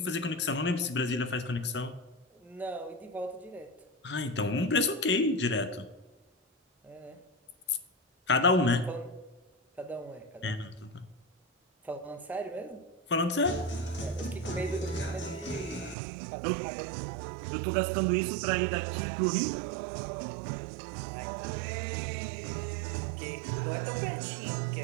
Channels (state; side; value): drops out; left; at 16.0 s